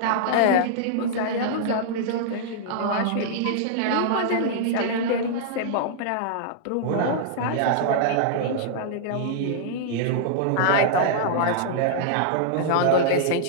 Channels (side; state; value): both; different; correlation -0.01